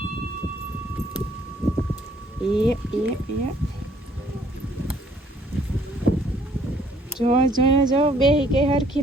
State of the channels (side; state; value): both; normal; correlation 0.62